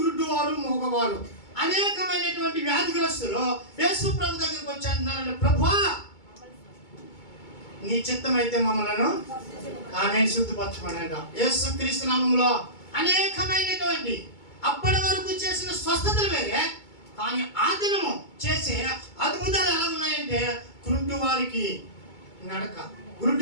మూగవారు అనేకమైనటువంటి వ్యాధిగ్రస్తులు యేసు ప్రభు దగ్గరికి వచ్చి అంటున్నారంటే, ప్రభువా నీ చిత్తం అయితే మమ్మలను ఆమె శుద్ధిపరచమనంట. యేసు క్రీస్తు నామములో అనేకమైనటువంటి అప్పటి వరకు చేసిన స్వస్థతలు వేరే, కానీ ఆ దినము చేసే అద్భుతాలు ఎలా ఉన్నాయంటే, గుడ్డివారికి నడక,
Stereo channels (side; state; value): right; late; 2.2 ms